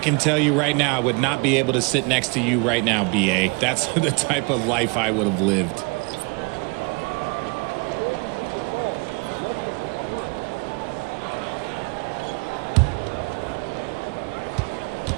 tell you right now, I would not be able to sit next to you right now, B.A. That's the type of life I would have lived.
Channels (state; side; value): quieter; left; 30.9 dB